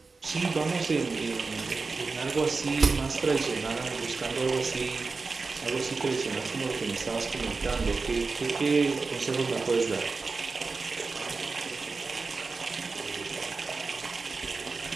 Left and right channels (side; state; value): left; quieter; 4.2 dB